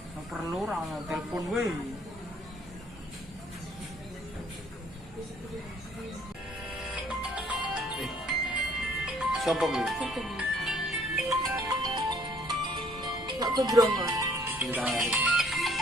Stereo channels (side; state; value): both; normal; correlation 0.60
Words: perlu ra ono telepon wae. Sopo kuwi? Gak kebrongo. Cinta.